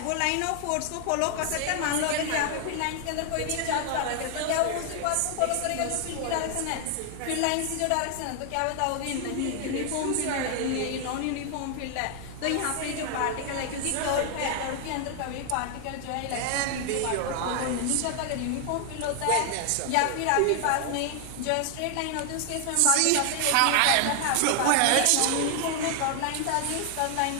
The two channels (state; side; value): different; both; correlation 0.00